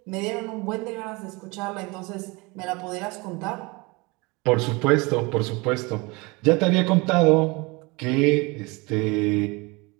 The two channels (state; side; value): quieter; left; 25.9 dB